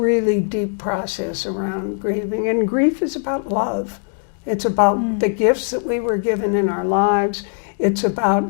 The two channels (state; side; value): silent; right; 66 dB below the other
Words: deep process around grieving. And grief is about love. It's about the gifts that we were given in our lives. It's